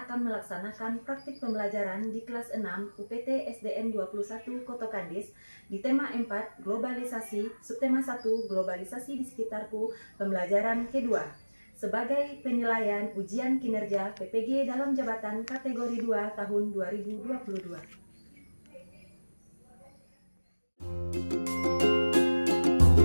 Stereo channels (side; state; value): both; inverted; correlation -1.00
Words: melaksanakan praktik pembelajaran di kelas 6 UPT SDN 21 Koto Kadis di tema 4 Globalisasi, subtema 1 Globalisasi di sekitarku, pembelajaran kedua, sebagai penilaian ujian kinerja PPG dalam jabatan kategori 2 tahun 2022.